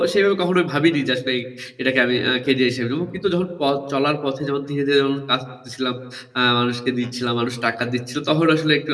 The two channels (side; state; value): both; identical; correlation 1.00